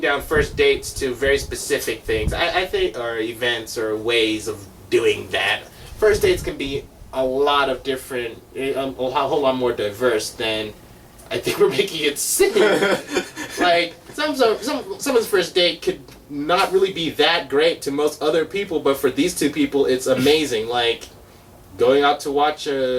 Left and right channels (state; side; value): identical; both; correlation 1.00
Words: first dates to very specific things. I think, or events or ways of doing that. First dates can be a lot of different, a whole lot more diverse than I think we're making it seem. Like someone's first date could not really be that great to most other people, but for these two people, it's amazing. Like going out to watch